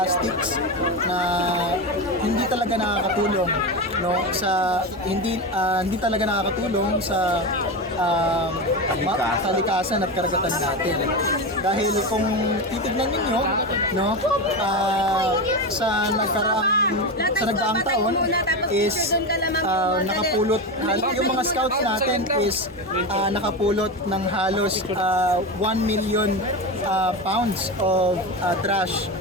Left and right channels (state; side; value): normal; both; correlation 0.19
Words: na hindi talaga nakakatulong, no, sa hindi talaga nakakatulong sa kalikasan at karagatan natin. Dahil kung titignan niyo, no, sa nagdaang taon is nakapulot, yung mga scouts natin is nakapulot ng halos 1 million pounds of trash.